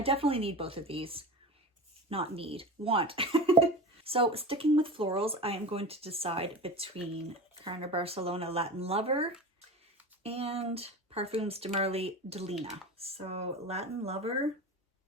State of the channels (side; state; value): both; normal; correlation 0.30